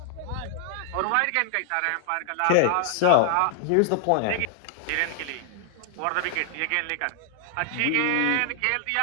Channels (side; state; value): both; different; correlation 0.00